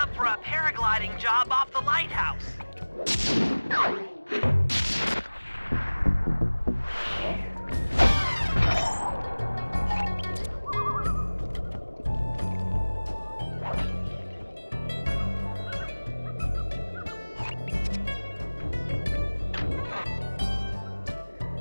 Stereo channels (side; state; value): both; inverted; correlation -1.00